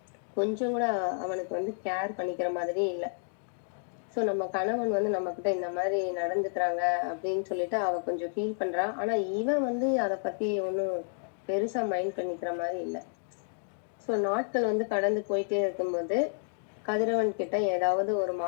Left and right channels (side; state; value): right; silent; digital silence